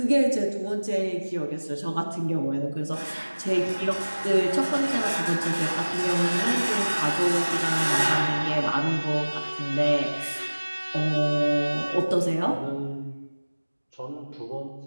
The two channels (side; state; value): both; inverted; correlation -1.00